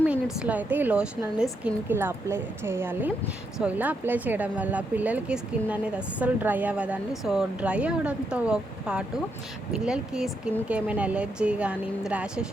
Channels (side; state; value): both; normal; correlation 0.80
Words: minutesలో అయితే ఈ లోషన్ అనేది స్కిన్కి ఇలా అప్లై చేయాలి. సో ఇలా అప్లై చేయడం వల్ల పిల్లలకి స్కిన్ అనేది అస్సలు డ్రై అవ్వదండి. సో డ్రై అవ్వడంతో పాటు పిల్లలకి స్కిన్కి ఏమైనా ఎలర్జీ కానీ